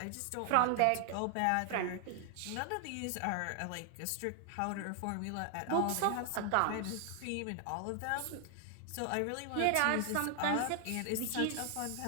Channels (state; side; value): different; both; correlation 0.00